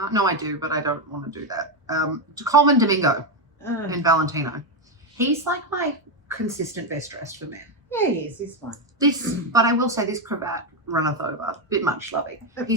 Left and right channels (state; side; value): normal; both; correlation 0.08